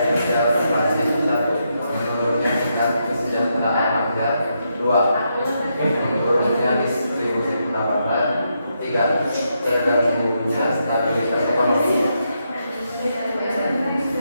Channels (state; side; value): inverted; both; correlation -0.81